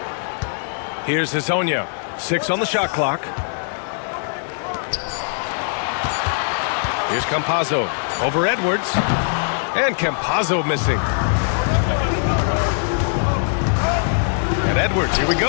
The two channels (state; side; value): silent; right; digital silence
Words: Here's Hezonja. 6 on the shot clock. Here's Campazzo. Over Edwards. And Campazzo missing. And Edwards, here we